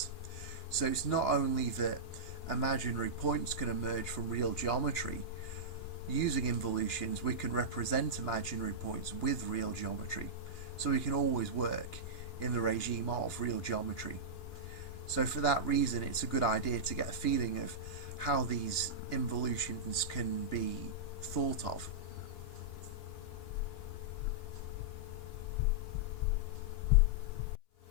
So it's not only that imaginary points can emerge from real geometry. Using involutions, we can represent imaginary points with real geometry, so we can always work in the regime of real geometry. So for that reason, it's a good idea to get a feeling of how these involutions can be thought of.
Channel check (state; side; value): late; right; 2.9 ms